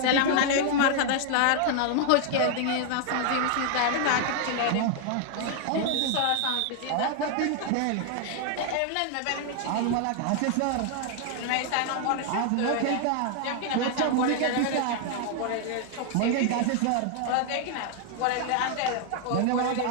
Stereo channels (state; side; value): different; both; correlation 0.00